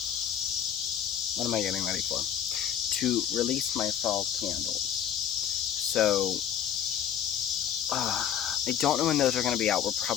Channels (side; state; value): right; quieter; 9.2 dB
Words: what am I getting ready for? To release my fall candles. So I don't know when those are going to be out. We're